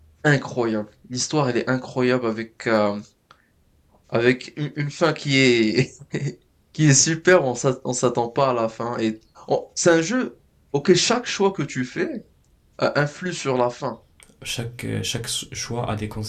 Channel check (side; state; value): both; identical; correlation 1.00